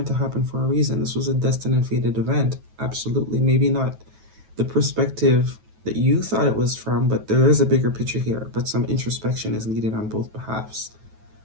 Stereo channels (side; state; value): left; late; 9.2 ms